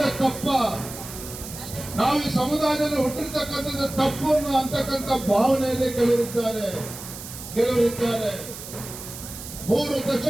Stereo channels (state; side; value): noise; right; hiss, 12 dB below the sound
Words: ತಪ್ಪ, ನಾವು ಈ ಸಮುದಾಯದಲ್ಲಿ ಹುಟ್ಟಿರ್ತಕ್ಕಂಥದ್ದು ತಪ್ಪು ಅಂತಕ್ಕಂಥ ಭಾವನೆಯಲ್ಲಿ ಕೆಲವರಿದ್ದಾರೆ. 3